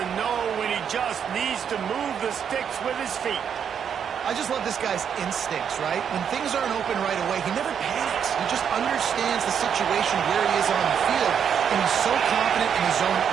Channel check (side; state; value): left; quieter; 7.9 dB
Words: know when he just needs to move the sticks with his feet. I just love this guy's instincts, right? When things aren't open right away, he never panics. He just understands the situation where he is on the field, and he's so confident in his own